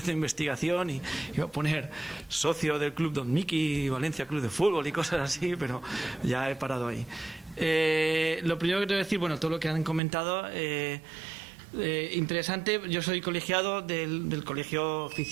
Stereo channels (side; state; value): left; drops out; at 10.0 s